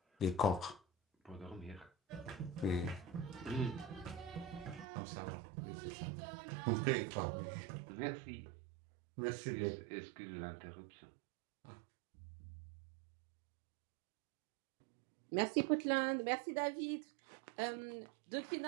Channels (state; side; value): drops out; left; at 4.9 s